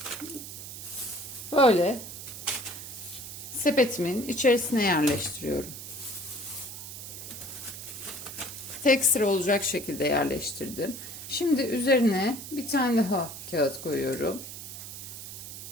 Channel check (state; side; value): noise; right; hiss, 10 dB below the sound